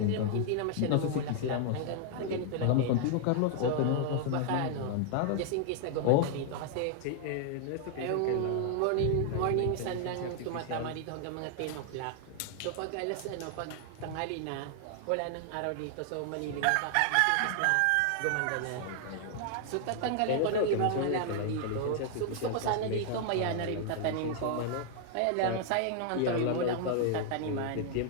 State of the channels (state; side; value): different; both; correlation 0.00